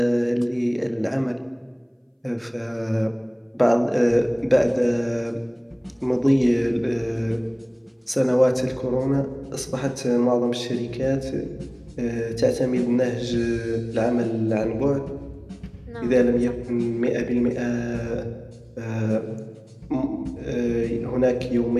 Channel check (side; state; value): both; identical; correlation 1.00